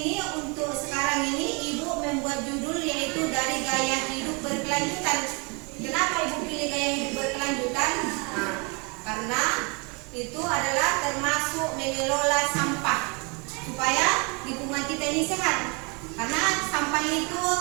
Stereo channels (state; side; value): quieter; left; 31.6 dB